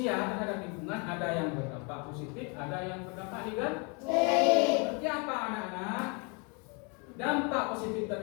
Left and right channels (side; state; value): right; quieter; 33.6 dB